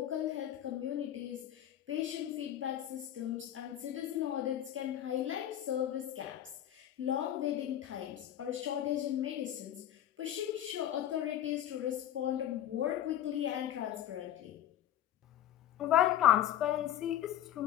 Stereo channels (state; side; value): quieter; right; 11.6 dB